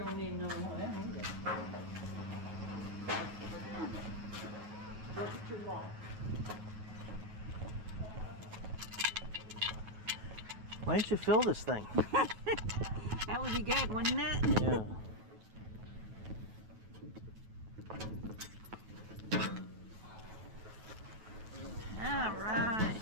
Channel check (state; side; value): late; left; 9.2 ms